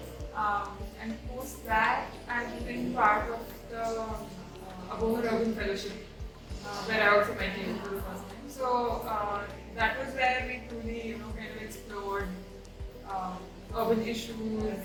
And post that, I've been part of the Apoorva Urban Fellowship, where I also met you for the first time. So that was where we truly, kind of explored urban issues,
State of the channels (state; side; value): identical; both; correlation 1.00